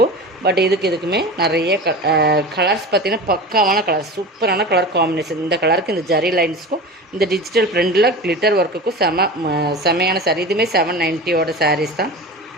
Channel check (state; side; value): normal; both; correlation 0.31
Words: பட் இதுக்குமே நிறைய கலர்ஸ் பார்த்திங்கன்னா பக்காவான கலர், சூப்பரான கலர் காம்பினேஷன். இந்த கலருக்கு இந்த ஜரி லைன்ஸுக்கும் இந்த டிஜிட்டல் பிரிண்டில் கிளிட்டர் ஒர்க்குக்கும் செமையான சாரீ. இதுவுமே 790 சாரீஸ் தான்.